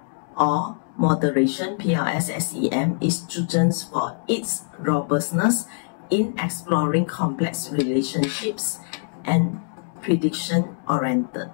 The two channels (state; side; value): silent; right; digital silence